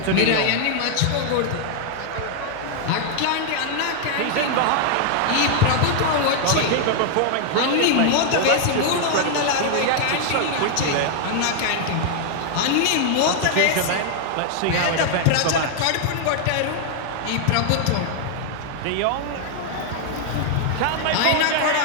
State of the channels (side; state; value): both; different; correlation 0.00